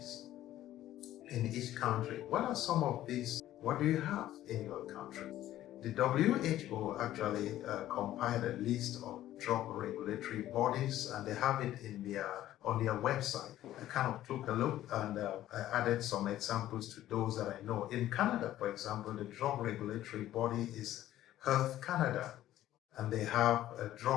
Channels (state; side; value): quieter; right; 13.5 dB